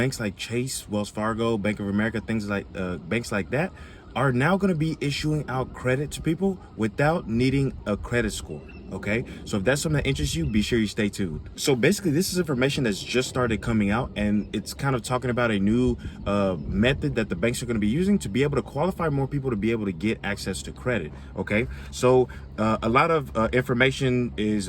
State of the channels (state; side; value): identical; both; correlation 1.00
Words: like Chase, Wells Fargo, Bank of America, things like banks like that, are now going to be issuing out credit to people without needing a credit score. Okay, so if that's something that interests you, be sure you stay tuned. So basically, this is information that's just started coming out, and it's kind of talking about a new method that the banks are going to be using to be able to qualify more people to be able to get access to credit. Okay, so a lot of information is